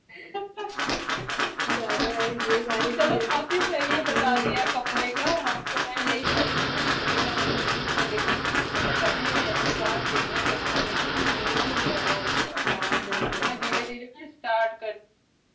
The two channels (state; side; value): identical; both; correlation 1.00